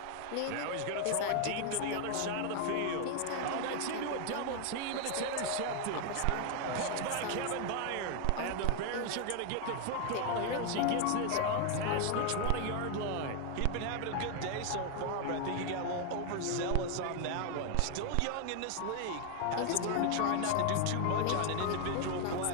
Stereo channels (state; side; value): different; both; correlation 0.01